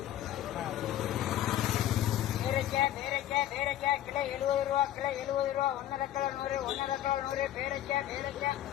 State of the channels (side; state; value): right; quieter; 12.5 dB